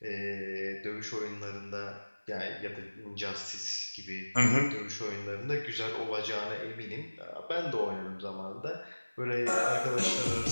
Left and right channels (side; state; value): both; inverted; correlation -1.00